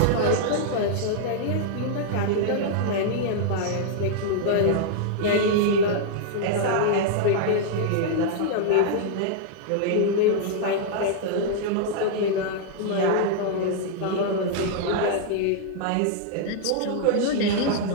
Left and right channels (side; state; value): both; different; correlation -0.01